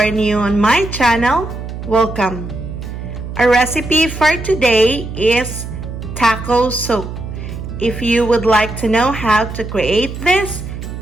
new on my channel, welcome. Our recipe for today is taco soup. If you would like to know how to create this,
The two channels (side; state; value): right; noise; hum, 8 dB below the sound